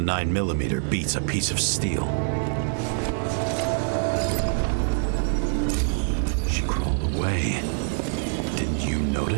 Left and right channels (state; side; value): silent; left; 60 dB below the other